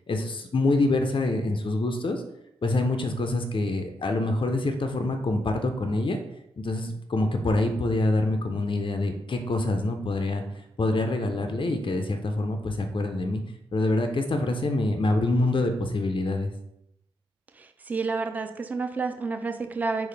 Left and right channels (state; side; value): normal; both; correlation 0.82